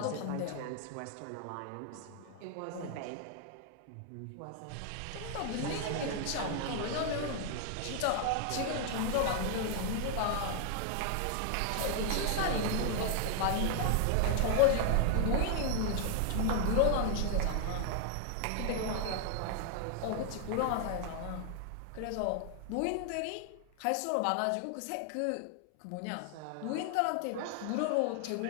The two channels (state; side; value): different; both; correlation 0.00